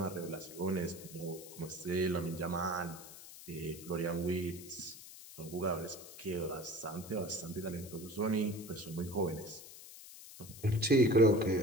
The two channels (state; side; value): noise; left; hiss, 15 dB below the sound